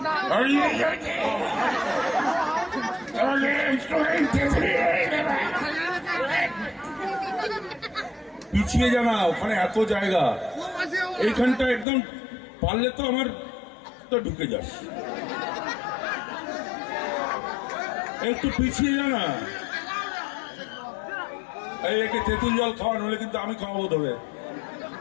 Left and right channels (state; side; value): drops out; right; at 11.9 s